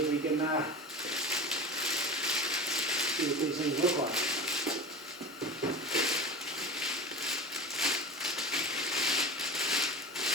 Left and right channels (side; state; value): both; normal; correlation 0.30